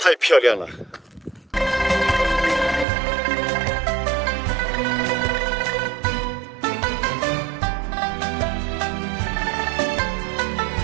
漂亮了。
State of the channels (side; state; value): left; drops out; at 2.9 s